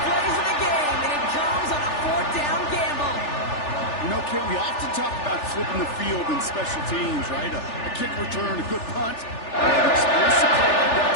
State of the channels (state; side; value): late; right; 3.4 ms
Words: plays of the game, and it comes on a 4th down gamble. You know, Kate, we often talk about flipping the field in special teams, right? A kick return, a good punt. An explosive play like that